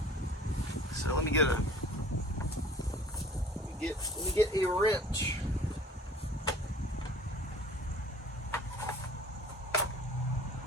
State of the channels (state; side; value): normal; both; correlation 0.48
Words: So let me get a wrench.